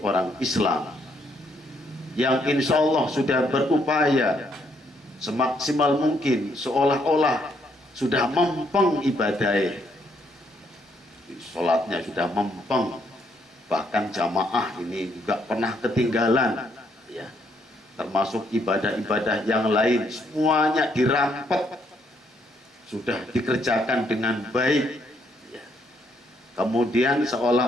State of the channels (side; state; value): both; normal; correlation 0.72